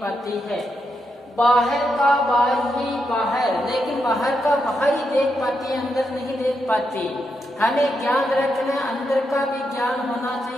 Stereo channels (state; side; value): normal; both; correlation 0.83